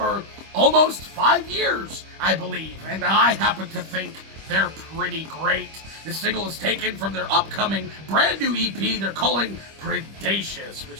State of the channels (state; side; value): late; left; 25 ms